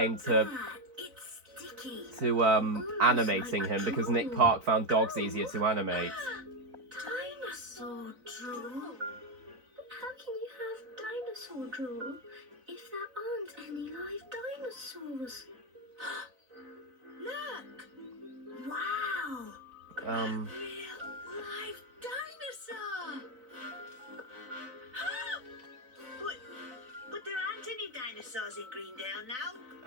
to It's sticky. animating him, because Nick Park found dogs easier to animate. Dinosaur drool? How can you have dinosaur drool if there aren't any live dinosaurs? Look! Wow! real live dinosaur. But there aren't any dinosaurs in Greendale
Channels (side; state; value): left; late; 4.0 ms